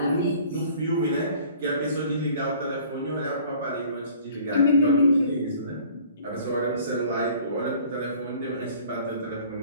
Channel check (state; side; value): inverted; both; correlation -0.51